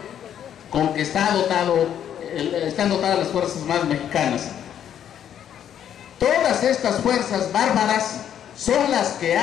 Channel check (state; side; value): quieter; right; 9.7 dB